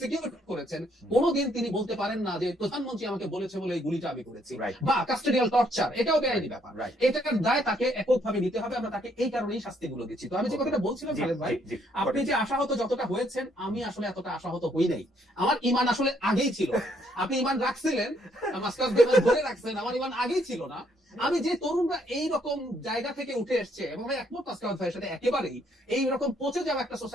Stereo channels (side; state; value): both; normal; correlation 0.69